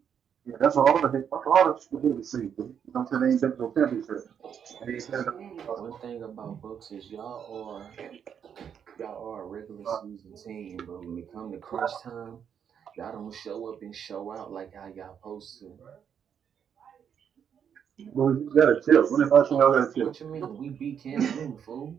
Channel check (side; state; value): left; quieter; 8.0 dB